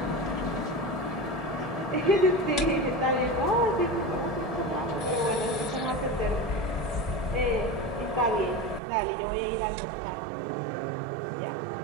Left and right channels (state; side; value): drops out; left; at 8.8 s